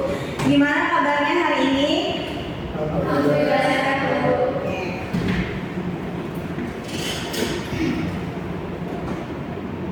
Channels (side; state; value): both; identical; correlation 1.00